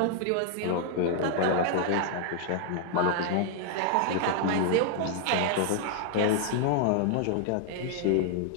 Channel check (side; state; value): both; different; correlation 0.00